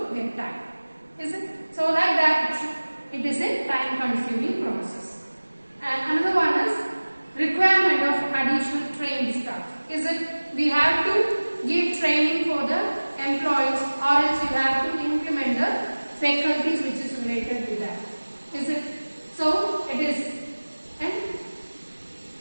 get time. Is it? So like that, it is a time consuming process. And another one is requirement of additional trained staff. Is it? We have to give training for the employees or else you have to implement the faculties which is related to that. Is it? So it is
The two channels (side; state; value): both; inverted; correlation -1.00